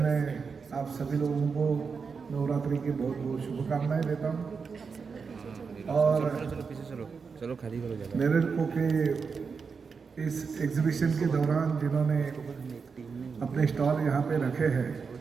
आप सभी लोगों को नवरात्रि की बहुत बहुत शुभकामनाएं देता हूँ और चलो खाली करो जगह। नेरेडको के इस एग्जीबिशन के दौरान जिन्होंने अपने स्टॉल यहाँ पे रखे हैं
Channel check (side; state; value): left; quieter; 5.4 dB